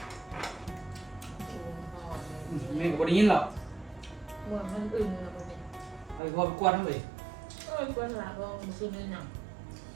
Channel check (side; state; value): left; drops out; at 6.2 s